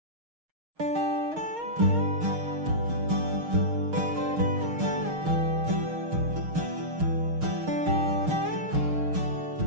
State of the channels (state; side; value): late; left; 6.4 ms